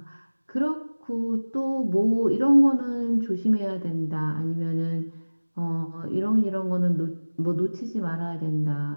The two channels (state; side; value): inverted; both; correlation -1.00